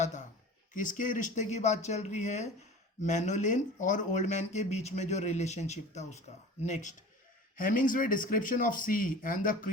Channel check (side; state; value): both; normal; correlation 0.39